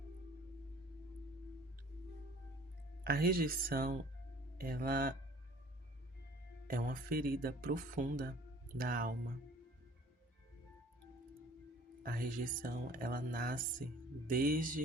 A rejeição, ela é uma ferida profunda da alma. A rejeição, ela nasce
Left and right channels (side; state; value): both; normal; correlation 0.51